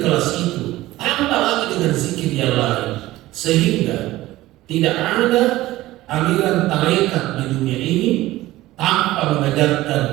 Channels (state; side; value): quieter; left; 16.9 dB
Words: itu, tambah lagi dengan zikir yang lain, sehingga tidak ada aliran tarekat di dunia ini tanpa mengajarkan